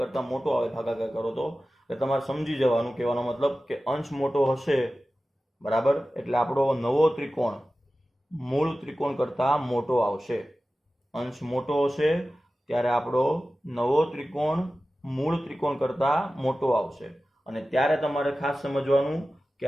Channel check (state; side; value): normal; both; correlation 0.95